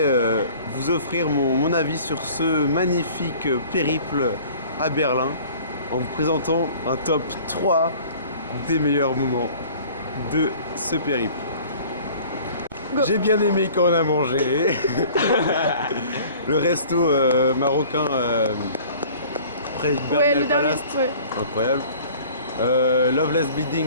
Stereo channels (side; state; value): both; inverted; correlation -0.48